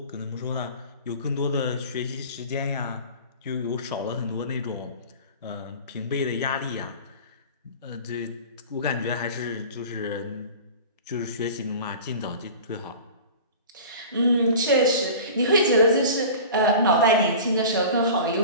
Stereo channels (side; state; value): both; inverted; correlation -0.37